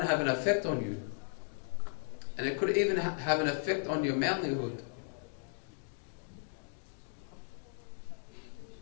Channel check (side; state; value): right; silent; digital silence